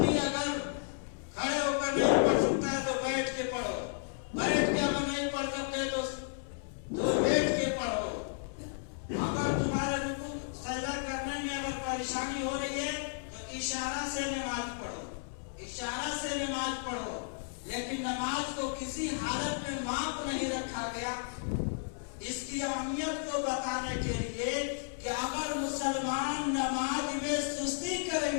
اگر کھڑے ہو کر نہیں پڑھ سکتا ہے تو بیٹھ کے پڑھو، بیٹھ کے اگر نہیں پڑھ سکتے تو بیٹھ کے پڑھو۔ اگر تمہارے رکوع سجدہ کرنے میں اگر پریشانی ہو رہی ہے تو اشارہ سے نماز پڑھو، اشارہ سے نماز پڑھو، لیکن نماز کو کسی حالت میں معاف نہیں رکھا گیا۔ اس کی اہمیت کو بتانے کے لیے کہ اگر مسلمان نماز میں سستی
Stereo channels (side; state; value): right; silent; 56 dB below the other